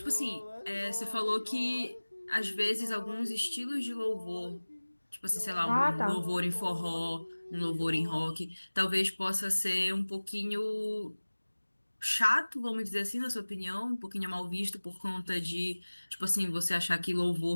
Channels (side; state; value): both; inverted; correlation -1.00